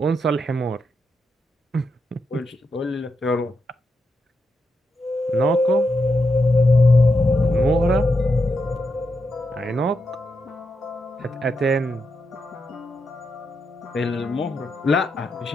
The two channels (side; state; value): both; normal; correlation 0.84